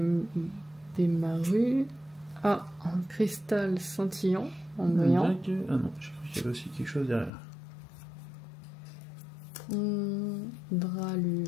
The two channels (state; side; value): drops out; right; at 7.3 s